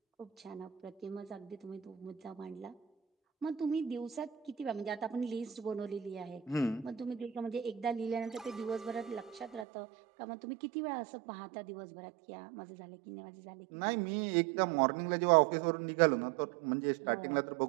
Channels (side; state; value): left; drops out; at 9.7 s